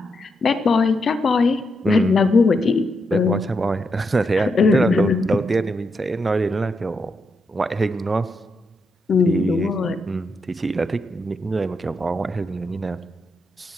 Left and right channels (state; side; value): normal; both; correlation 0.82